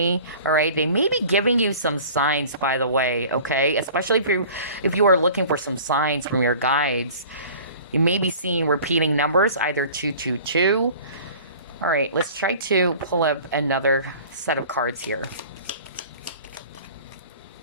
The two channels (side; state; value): both; inverted; correlation -0.44